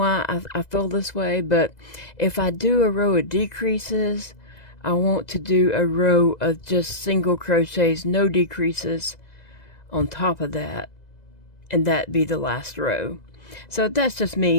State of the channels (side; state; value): right; late; 2.0 ms